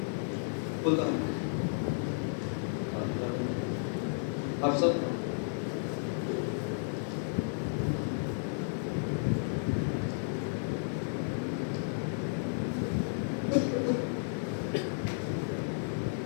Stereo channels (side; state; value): right; silent; digital silence